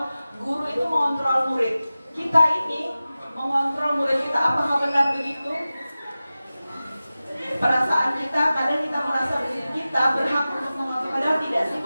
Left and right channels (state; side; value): inverted; both; correlation -0.96